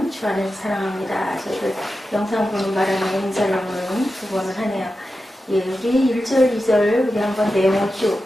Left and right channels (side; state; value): both; normal; correlation 0.91